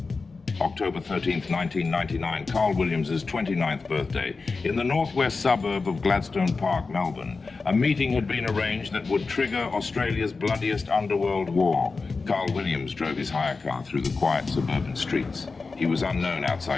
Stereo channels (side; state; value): right; quieter; 4.2 dB